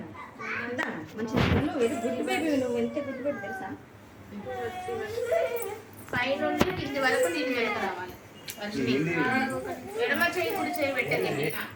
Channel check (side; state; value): both; identical; correlation 1.00